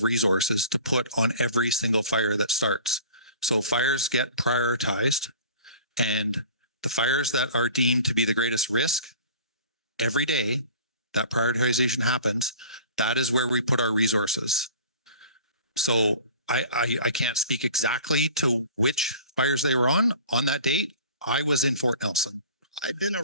resources to put on every single fire that starts. So fires get prioritized, and the fires that are deemed to be the greatest risk, every day that prioritization happens, that is where we put our resources. So I can't speak exactly to which fires they were on that date. I was in Fort Nelson I've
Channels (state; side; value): inverted; both; correlation -0.43